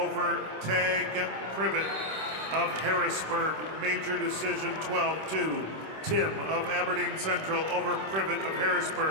Tag Privet of Harrisburg. Major decision 12-2. Tim of Aberdeen Central over Privet of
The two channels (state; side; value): late; left; 26 ms